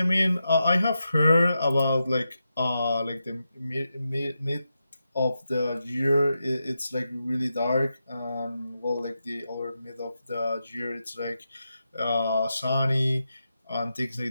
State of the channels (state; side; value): inverted; both; correlation -0.88